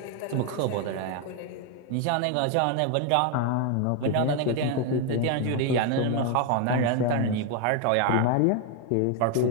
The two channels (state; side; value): different; both; correlation 0.01